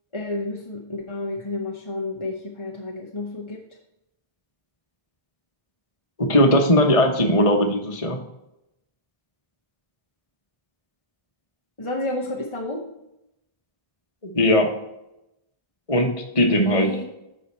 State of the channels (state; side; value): late; right; 1.5 ms